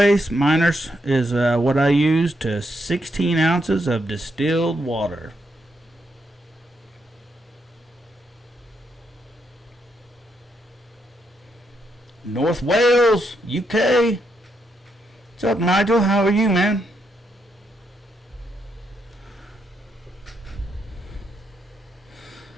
Miners is what I use to 16 ounces of distilled water. North Wales, UK. What's up, Nigel? How are you, man?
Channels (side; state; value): both; normal; correlation 0.79